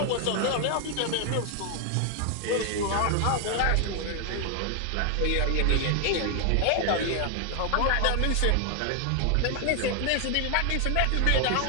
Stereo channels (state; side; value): different; both; correlation 0.00